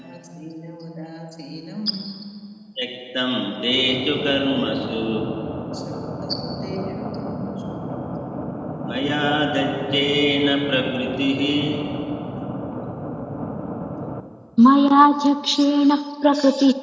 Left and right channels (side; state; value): both; identical; correlation 1.00